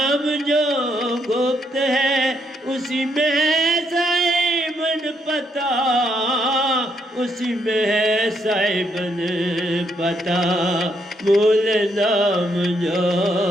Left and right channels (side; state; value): both; normal; correlation 0.75